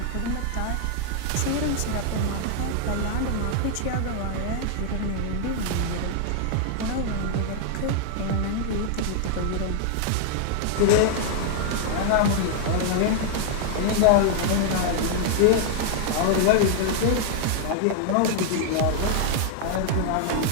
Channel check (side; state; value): both; different; correlation -0.01